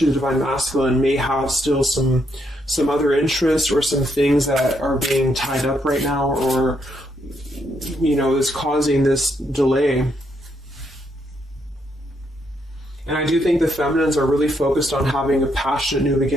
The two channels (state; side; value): normal; both; correlation 0.76